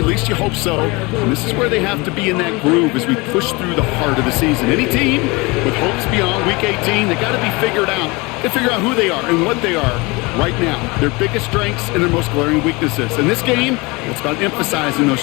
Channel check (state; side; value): quieter; right; 25.4 dB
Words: least you hope so. And this is where they have to be in that groove as we push through the heart of the season. Any team with hopes beyond Week 18, they got to be figured out. They figure out who they are and what they are right now, their biggest strengths and their most glaring weaknesses. In this game, it's about emphasizing those